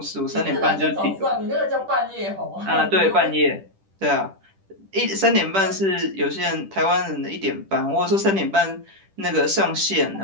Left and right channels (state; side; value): late; left; 10 ms